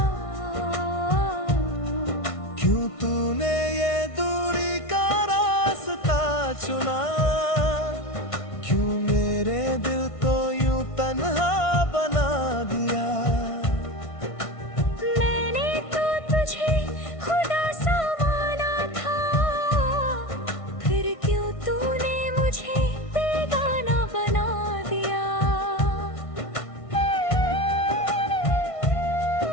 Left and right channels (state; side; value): late; right; 1.6 ms